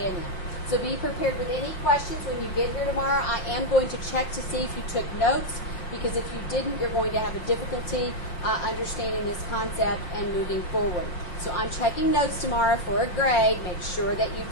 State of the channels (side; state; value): right; late; 5.9 ms